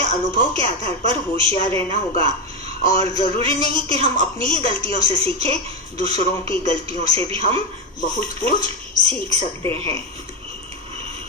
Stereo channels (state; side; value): normal; both; correlation 0.12